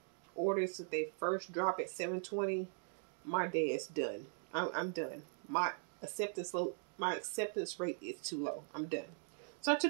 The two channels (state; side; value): silent; left; 51 dB below the other